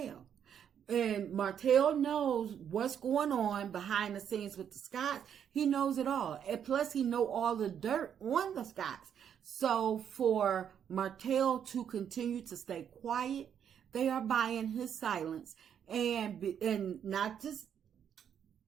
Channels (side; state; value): left; quieter; 8.6 dB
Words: And Martell knows what's going on behind the scenes with the Scotts. He knows it all. And plus, he know all the dirt on the Scotts. So for Martell to continue to stay quiet, they are buying his silence. And not to